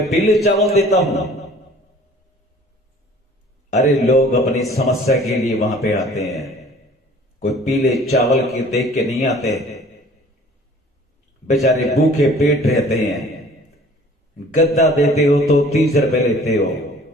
पीले चावल देता हूं। अरे लोग अपनी समस्या के लिए वहां पे आते हैं, कोई पीले चावल के देख के नहीं आते। बेचारे भूखे पेट रहते हैं। गद्दा देते हो तो 30 रुपए लेते हो,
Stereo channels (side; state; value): both; normal; correlation 0.50